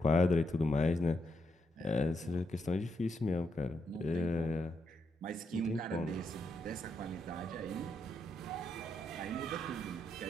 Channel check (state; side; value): normal; both; correlation 0.80